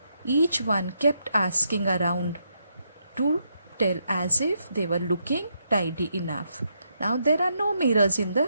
Each one kept asking around to tell as if they were looking tidy enough. Now there are no mirrors in the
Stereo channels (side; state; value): both; inverted; correlation -0.79